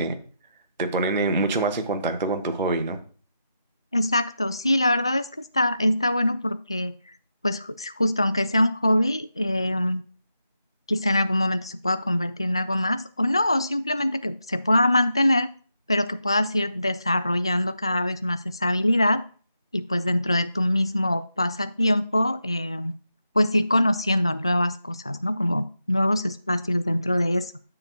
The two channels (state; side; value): inverted; both; correlation -0.86